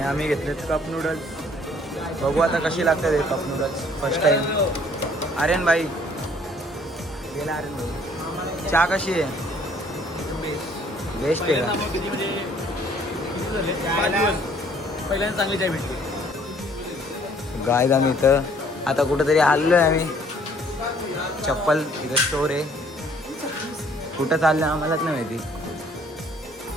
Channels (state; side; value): normal; both; correlation 0.60